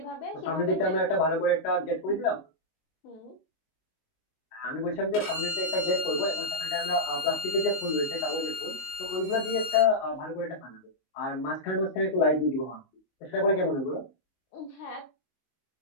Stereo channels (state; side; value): late; right; 19 ms